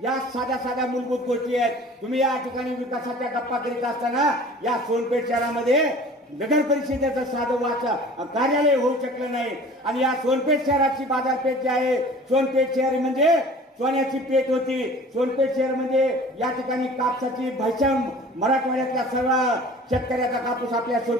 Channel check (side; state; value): both; normal; correlation 0.45